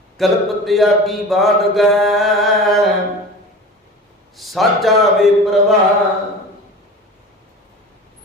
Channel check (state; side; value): normal; both; correlation 0.36